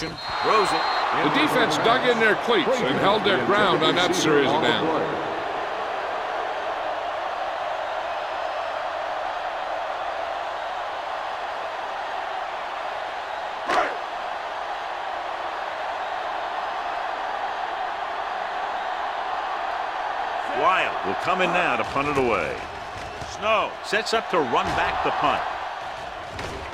Throws it. The defense dug in their cleats and held their ground on that series of downs. Lyle will come in now to punt it away. Snow sets up to run back the punt.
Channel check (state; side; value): identical; both; correlation 1.00